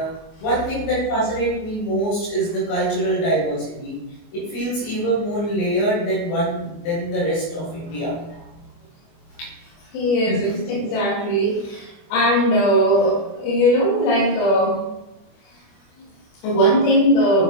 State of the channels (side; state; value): right; late; 24 ms